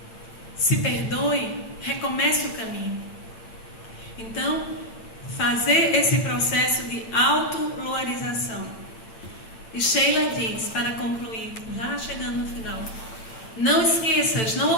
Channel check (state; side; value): late; right; 9.0 ms